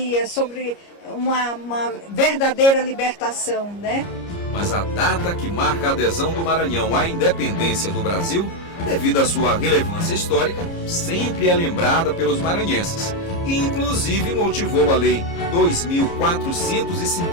sobre uma verdadeira libertação, né? Mas a data que marca a adesão do Maranhão à independência do Brasil, devido à sua relevância histórica, sempre é lembrada pelos maranhenses. E inclusive motivou a Lei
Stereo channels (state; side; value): late; right; 29 ms